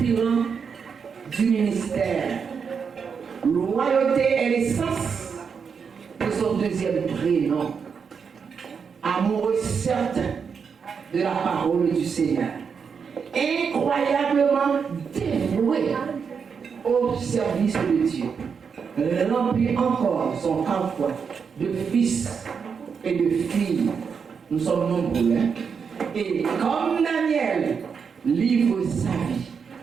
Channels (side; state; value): left; quieter; 6.2 dB